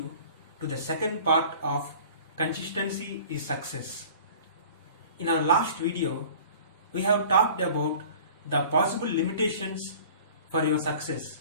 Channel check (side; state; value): both; inverted; correlation -0.45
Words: to the second part of Consistency is Success. In our last video, we have talked about the possible limitations for your success.